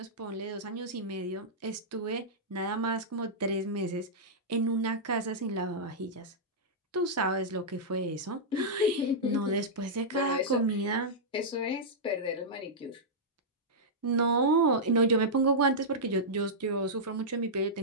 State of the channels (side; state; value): both; normal; correlation -0.11